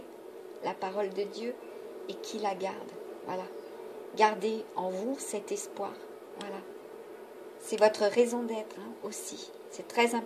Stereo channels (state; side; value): identical; both; correlation 1.00